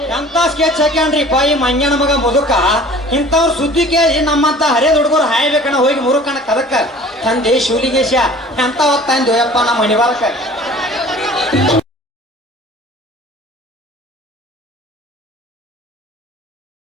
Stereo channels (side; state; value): both; normal; correlation 0.47